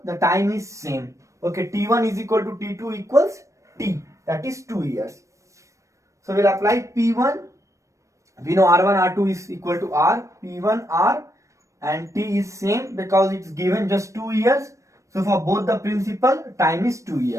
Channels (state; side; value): late; left; 0.15 ms